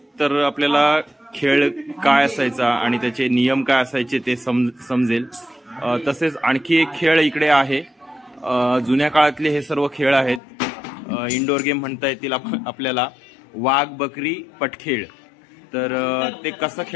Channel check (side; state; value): right; drops out; at 10.4 s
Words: तर आपल्याला खेळ काय असायचा आणि त्याचे नियम काय असायचे ते समजेल. तसेच आणखी एक खेळ इकडे आहे. जुन्या काळातले हे सर्व खेळ आहेत. इंडोर गेम म्हणता येतील आपल्याला. वाघ बकरी पटखेळ, तर ते कसं